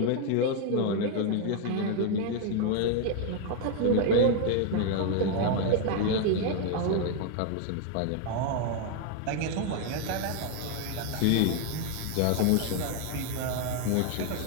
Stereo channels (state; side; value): different; both; correlation 0.01